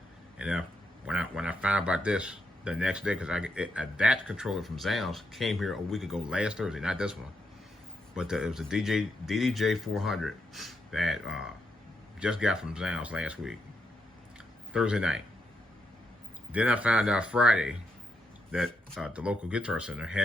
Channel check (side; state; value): both; normal; correlation 0.81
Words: and when I found about this the next day, because that controller from Zales came here a week ago, last Thursday, not this one, but it was a DDJ 400 that just got from Zales last week, Thursday night. Then I found out Friday that the local Guitar Center